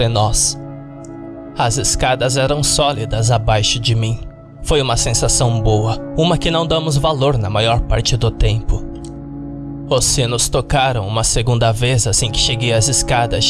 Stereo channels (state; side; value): identical; both; correlation 1.00